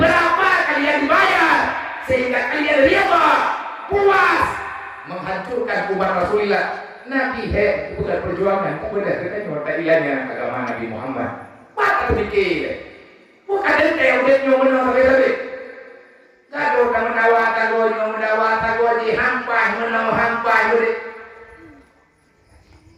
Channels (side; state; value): both; identical; correlation 1.00